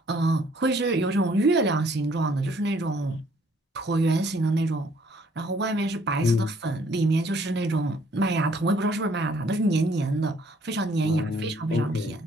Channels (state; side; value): normal; both; correlation 0.62